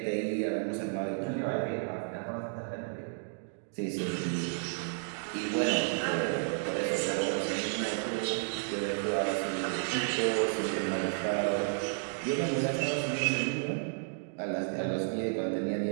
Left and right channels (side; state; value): left; silent; 56 dB below the other